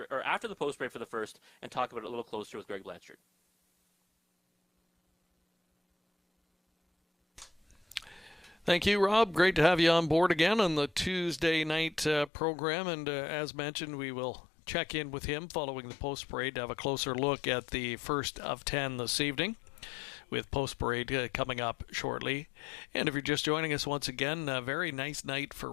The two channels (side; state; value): right; drops out; at 12.3 s